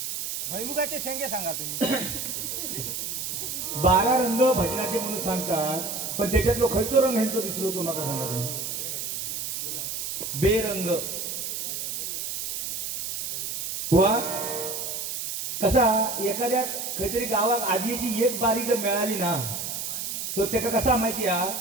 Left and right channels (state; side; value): noise; right; hiss, 4 dB below the sound